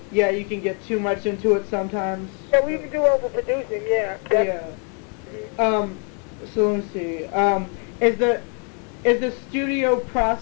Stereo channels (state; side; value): quieter; right; 39.3 dB